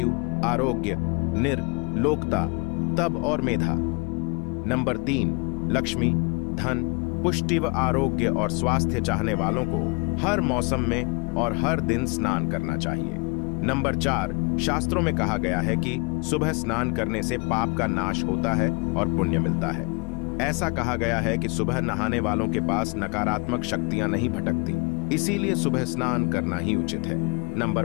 आरोग्य, निर्लोकता, तप और मेधा। नंबर 3, लक्ष्मी, धन, पुष्टि व आरोग्य और स्वास्थ्य चाहने वालों को हर मौसम में और हर दिन स्नान करना चाहिए। नंबर 4, शास्त्रों में कहा गया है कि सुबह स्नान करने से पाप का नाश होता है और पुण्य मिलता है। ऐसा कहा गया है कि सुबह नहाने वालों के पास नकारात्मक शक्तियां नहीं भटकती, इसीलिए सुबह स्नान करना ही उचित है। नंबर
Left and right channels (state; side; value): quieter; right; 29.6 dB